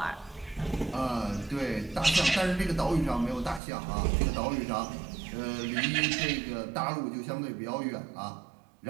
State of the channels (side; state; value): left; drops out; at 3.6 s